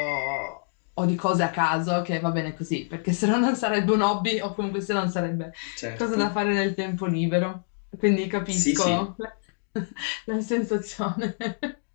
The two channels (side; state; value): right; silent; digital silence